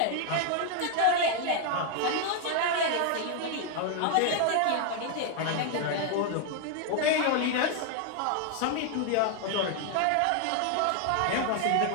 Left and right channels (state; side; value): different; both; correlation 0.00